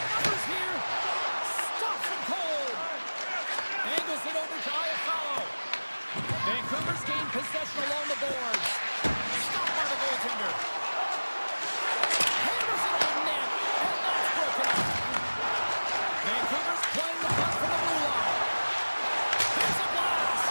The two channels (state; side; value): inverted; both; correlation -1.00